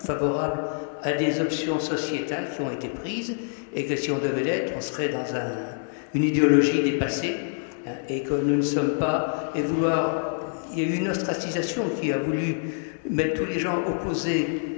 à des options sociétales qui ont été prises, et que si on devait l'être, on serait dans une idéologie dépassée, hein, et que nous ne sommes pas, et vouloir... Il y a eu une ostracisation qui a voulu mettre tous les gens opposés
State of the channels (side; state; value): right; silent; digital silence